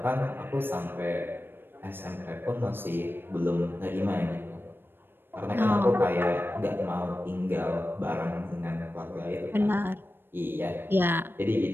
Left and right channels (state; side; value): late; left; 0.099 ms